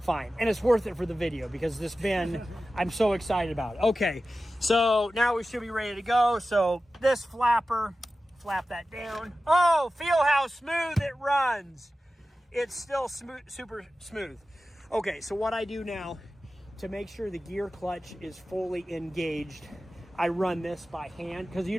fine. And it's worth it for the video because this bin, I'm so excited about it. Okay, so now we should be ready to go. So this flapper, flap that down. Oh, feel how smooth it runs. It's still smooth, super smooth. Okay, so what I do now to make sure the gear clutch is fully engaged, I run this by hand because you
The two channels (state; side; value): normal; both; correlation 0.94